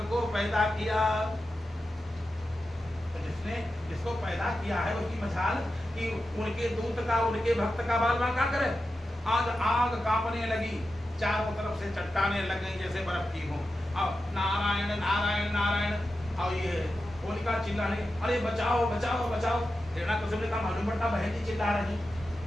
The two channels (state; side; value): normal; both; correlation 0.91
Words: को पैदा किया। तो जिसने जिसको पैदा किया है उसकी मजाल कि उनके दूत का, उनके भक्त का बाल बाल क्या करे। आज आग कांपने लगी, चारों तरफ से चट्टाने लग गई जैसे बर्फ की हो। अब नारायण नारायण नारायण और ये होलिका चिल्लाने, अरे बचाओ बचाओ बचाओ। हिरण्यकश्यप ने कहा मालूम पड़ता बहन जी चिल्ला रही।